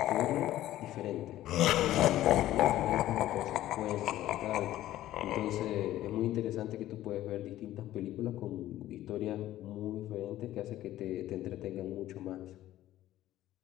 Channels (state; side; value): quieter; right; 14.1 dB